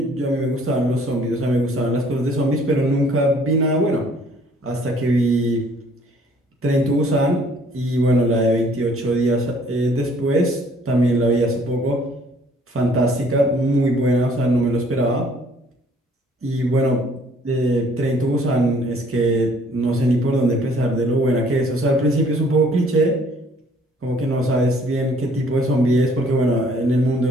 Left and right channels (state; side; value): normal; both; correlation 0.59